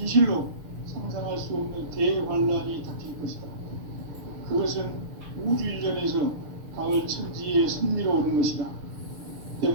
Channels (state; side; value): late; left; 6.6 ms